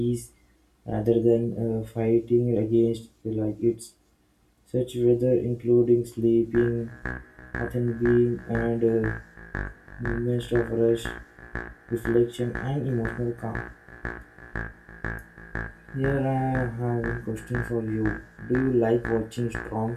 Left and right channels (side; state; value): both; identical; correlation 1.00